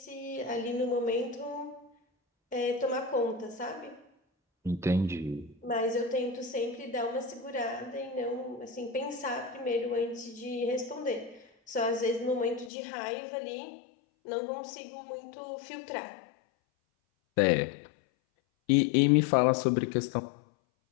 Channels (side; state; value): right; drops out; at 12.7 s